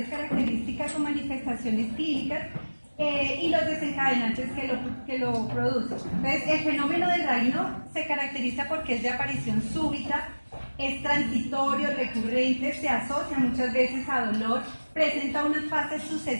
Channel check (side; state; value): both; inverted; correlation -1.00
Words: características o manifestaciones clínicas y los desencadenantes que lo producen. Entonces, el fenómeno de Raynaud se caracteriza porque es de aparición súbita, es transitorio, recurrente, se asocia muchas veces a dolor, presenta unas fases